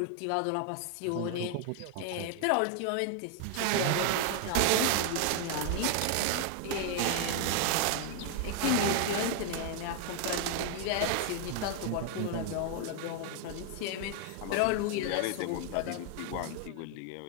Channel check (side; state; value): both; different; correlation 0.00